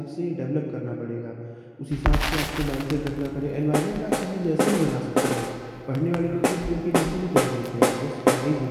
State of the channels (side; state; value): both; identical; correlation 1.00